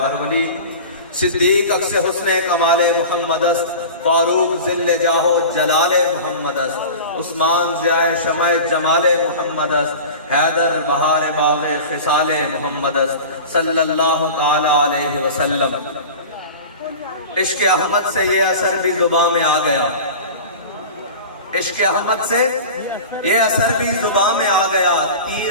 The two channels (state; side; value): inverted; both; correlation -0.35